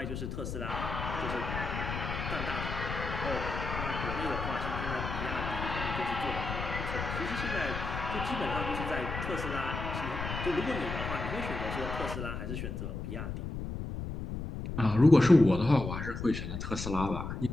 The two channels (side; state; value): left; noise; rumble, 5 dB below the sound